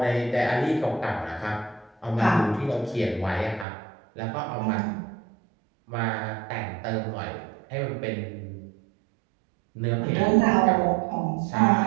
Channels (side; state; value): left; drops out; at 3.7 s